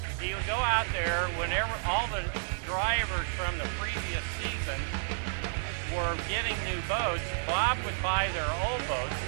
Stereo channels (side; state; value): left; silent; digital silence